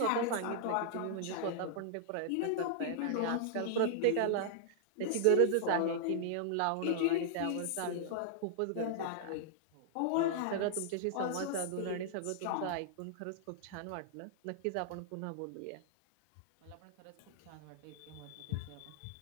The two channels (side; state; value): both; different; correlation -0.01